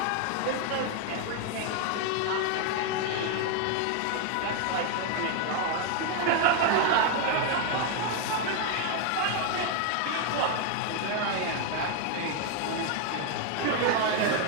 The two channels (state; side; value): different; both; correlation 0.01